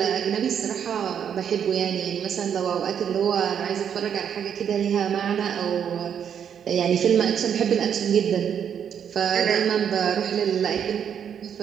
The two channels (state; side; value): quieter; left; 8.3 dB